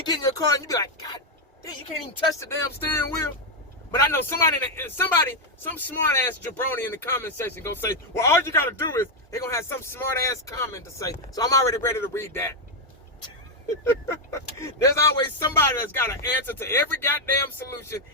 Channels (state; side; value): normal; both; correlation 0.02